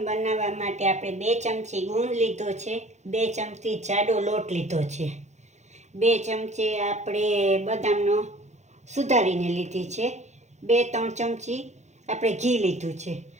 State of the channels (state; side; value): late; left; 0.33 ms